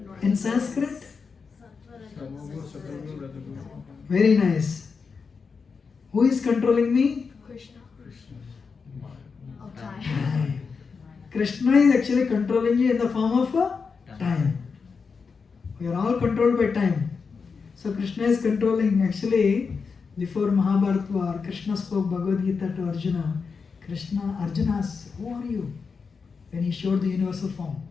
In Sanskrit? Very nice. Who is controlling me? Krishna. Time. Krishna is actually controlling you in the form of time. We are all controlled by time. So Krishna is controlling. Actually, before Mahabharata war, Krishna spoke Bhagavad Gita to Arjuna. Arjuna asked, who are you? When he showed the universal form.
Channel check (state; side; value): quieter; right; 5.2 dB